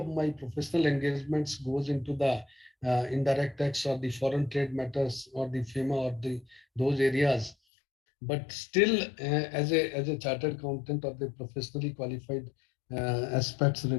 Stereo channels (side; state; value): right; drops out; at 7.6 s